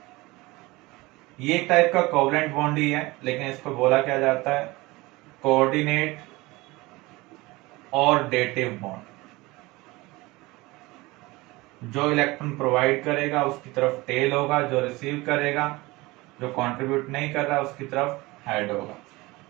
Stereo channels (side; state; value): left; quieter; 21.7 dB